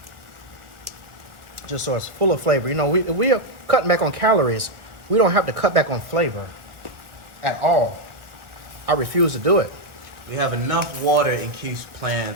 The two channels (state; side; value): late; left; 1.6 ms